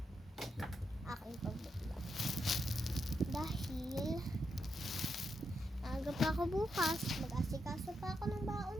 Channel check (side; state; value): both; normal; correlation 0.83